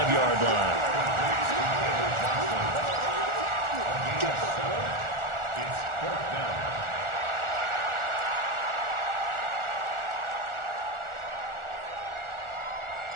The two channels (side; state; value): left; late; 1.4 ms